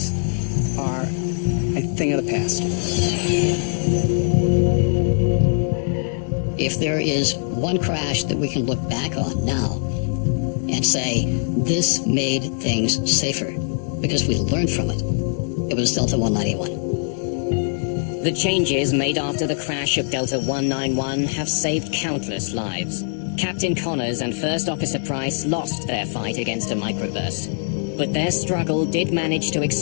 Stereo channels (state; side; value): silent; right; 64 dB below the other